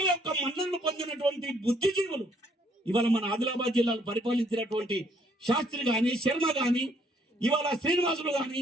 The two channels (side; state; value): both; normal; correlation 0.66